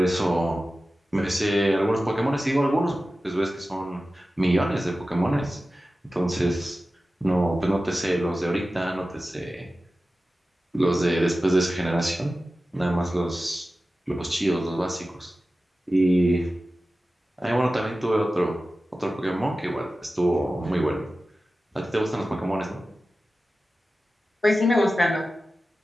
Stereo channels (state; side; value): normal; both; correlation 0.95